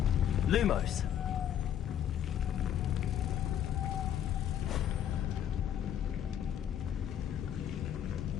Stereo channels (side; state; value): right; quieter; 10.0 dB